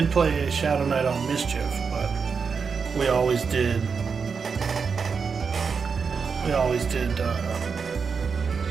play a Shadow Knight on Mischief, but we always did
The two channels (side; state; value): left; quieter; 5.6 dB